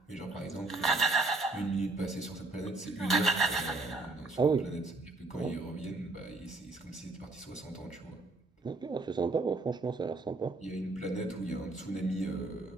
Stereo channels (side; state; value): left; quieter; 3.2 dB